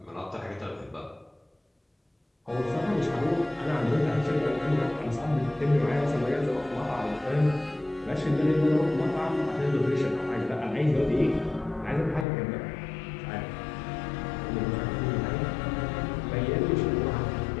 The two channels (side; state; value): right; drops out; at 12.2 s